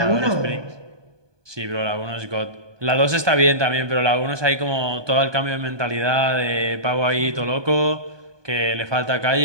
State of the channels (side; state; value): left; late; 1.2 ms